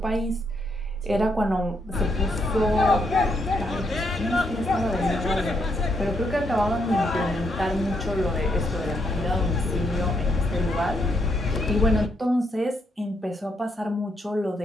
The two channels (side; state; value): both; normal; correlation 0.77